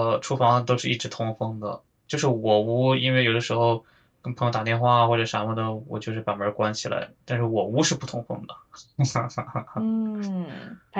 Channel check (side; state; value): both; identical; correlation 1.00